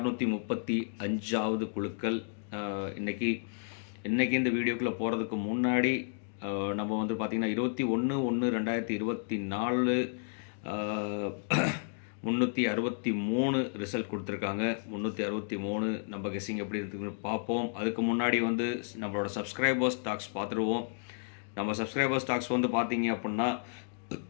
குழுக்கள். இன்றைக்கி இந்த வீடியோக்குள்ளே போகிறதுக்கு முன்னாடி நம்ம வந்து பார்த்திங்கன்னா 21/1/2024 363 ரிசல்ட் கொடுத்துருக்காங்க. 363 நம்ம கெஸ்ஸிங் எப்படி இருக்குன்னு பார்ப்போம். அதுக்கு முன்னாடி வந்து நம்மளோட சப்ஸ்கிரைபர்ஸ் டாக்ஸ் பார்த்துருவோம். நம்ம சப்ஸ்கிரைபர்ஸ் டாக்ஸ் வந்து பார்த்தீங்க அப்படின்னா,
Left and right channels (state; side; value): silent; right; digital silence